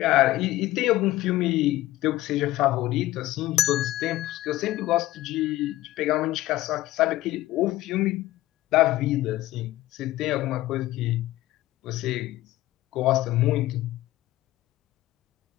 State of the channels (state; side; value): quieter; right; 16.1 dB